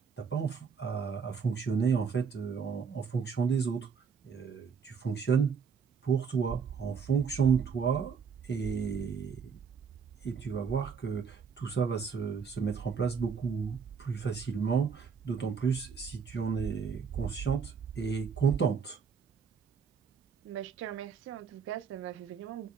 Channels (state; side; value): quieter; left; 6.1 dB